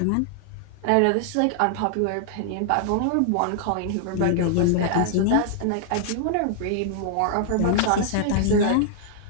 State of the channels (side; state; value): both; different; correlation -0.01